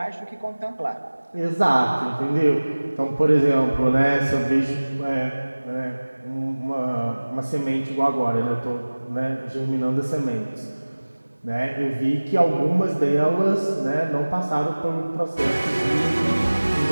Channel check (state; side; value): inverted; both; correlation -1.00